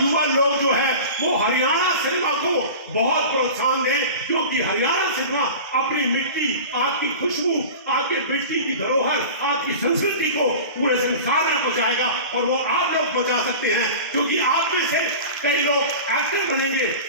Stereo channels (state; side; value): inverted; both; correlation -0.34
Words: लोग जो है वो हरियाणा सिनेमा को बहुत प्रोत्साहन दें, क्योंकि हरियाणा सिनेमा अपनी मिट्टी, आपकी खुशबू, आपके मिट्टी की धरोहर, आपकी संस्कृति को पूरे संसार में पहुंचाएगा। और वो आप लोग पहुंचा सकते हैं, क्योंकि आप में से कई लोग एक्टर बनेंगे,